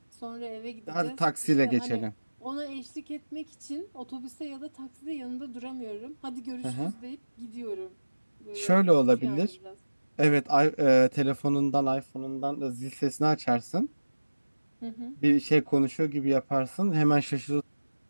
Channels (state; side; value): inverted; both; correlation -1.00